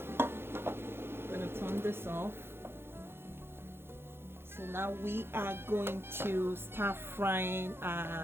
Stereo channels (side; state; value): left; late; 0.11 ms